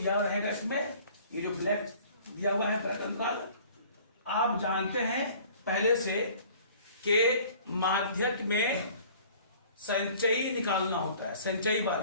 हुआ है इसमें, ये जो ब्लैक दिया हुआ है ब्लैक अंतराल। आप जानते हैं पहले से कि माध्यक में संचयी निकालना होता है, संचयी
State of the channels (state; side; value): inverted; both; correlation -0.50